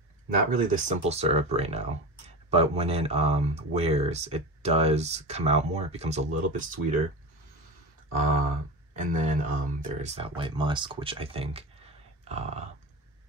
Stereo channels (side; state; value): both; normal; correlation 0.26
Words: Not really the simple syrup right now, but when it wears, it does come out more. It becomes a little bit sweeter. And then there's that white musk, which I think